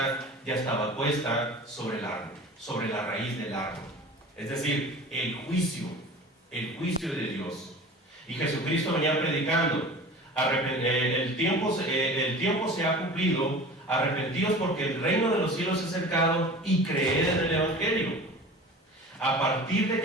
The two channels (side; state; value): both; normal; correlation 0.39